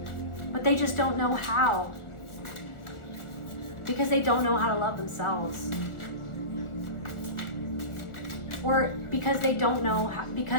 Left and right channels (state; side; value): late; right; 1.4 ms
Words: but they just don't know how, because they don't know how to love themselves, or because they don't know how,